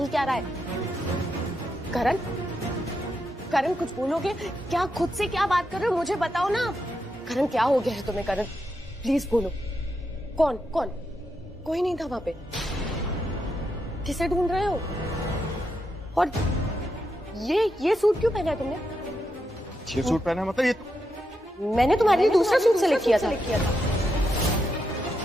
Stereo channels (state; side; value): normal; both; correlation 0.84